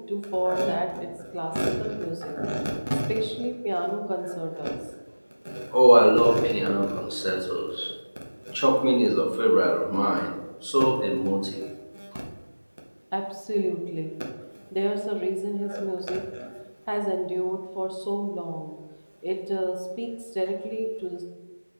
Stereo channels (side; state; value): both; inverted; correlation -1.00